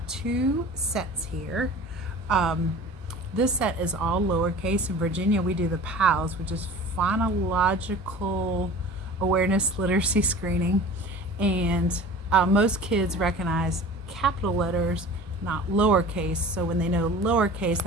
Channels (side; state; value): both; normal; correlation 0.40